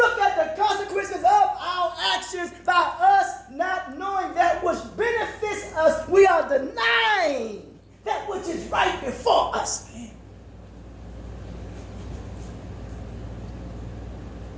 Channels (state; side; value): identical; both; correlation 1.00